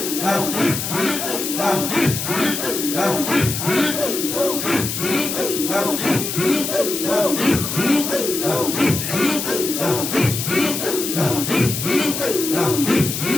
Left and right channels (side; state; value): left; noise; hiss, 4 dB below the sound